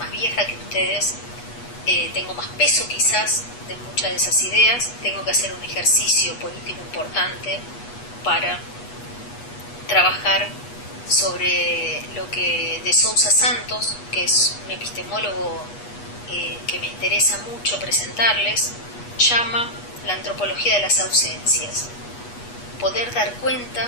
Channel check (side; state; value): right; late; 8.3 ms